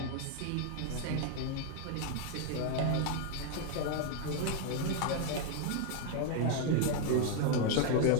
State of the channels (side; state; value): both; different; correlation 0.00